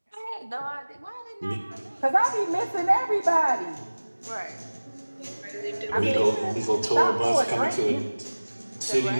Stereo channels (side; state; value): both; inverted; correlation -1.00